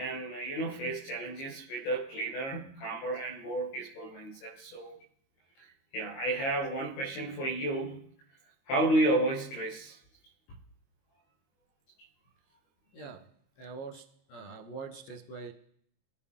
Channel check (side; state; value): right; late; 22 ms